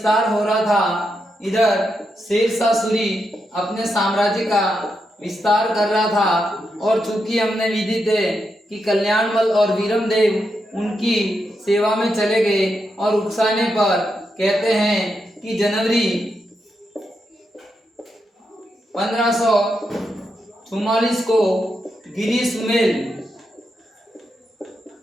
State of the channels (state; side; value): normal; both; correlation 0.84